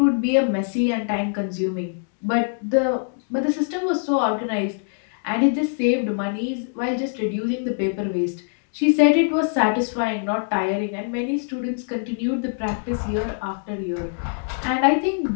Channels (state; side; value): silent; right; digital silence